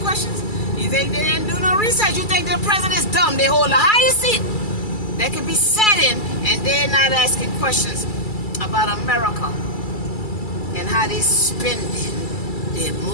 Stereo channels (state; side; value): late; right; 2.3 ms